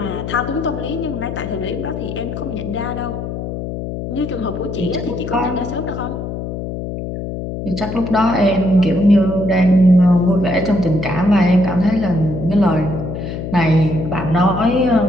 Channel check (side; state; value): left; noise; hum, 6 dB below the sound